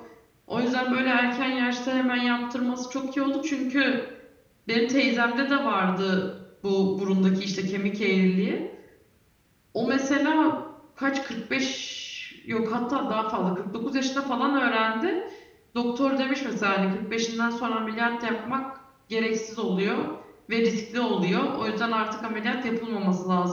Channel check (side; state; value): both; identical; correlation 1.00